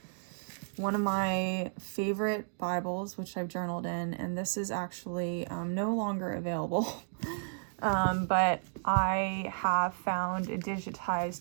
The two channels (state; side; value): silent; left; digital silence